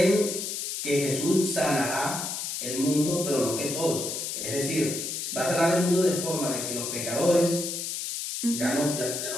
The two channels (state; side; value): noise; left; hiss, 4 dB below the sound